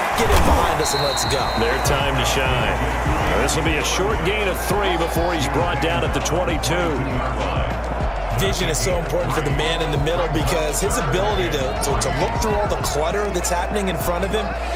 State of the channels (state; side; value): identical; both; correlation 1.00